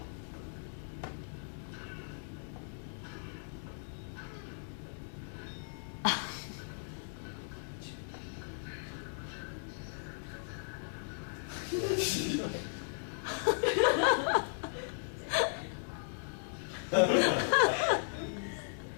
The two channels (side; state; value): right; silent; digital silence